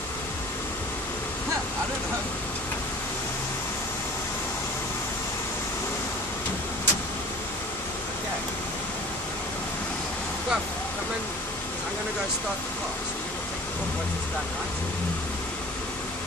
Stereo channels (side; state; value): both; normal; correlation 0.44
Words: I don't know. Okay. Come in. I'm going to go start the car. So you're going to take the book once it's done, right?